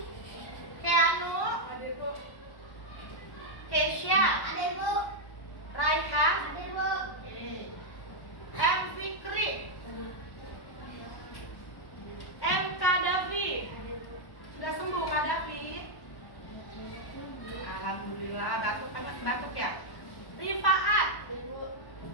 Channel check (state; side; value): late; right; 1.1 ms